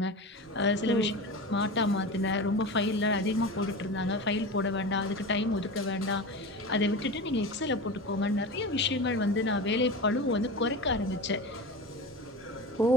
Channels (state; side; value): normal; both; correlation 0.28